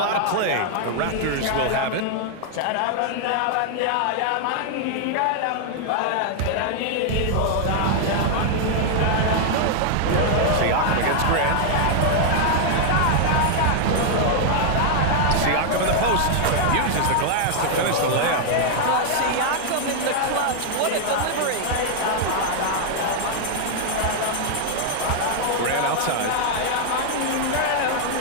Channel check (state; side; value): different; both; correlation 0.00